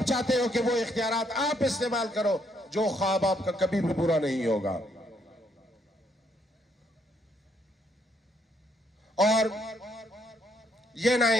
चाहते हो कि वो इख्तियारात आप इस्तेमाल करो, जो ख्वाब आपका कभी भी पूरा नहीं होगा। और ये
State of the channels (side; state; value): both; normal; correlation 0.72